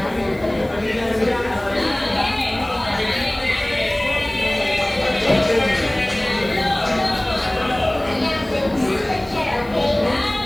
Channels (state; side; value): noise; left; hiss, 27 dB below the sound